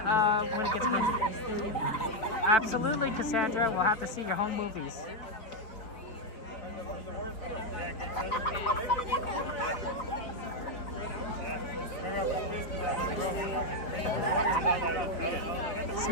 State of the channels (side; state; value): right; late; 4.2 ms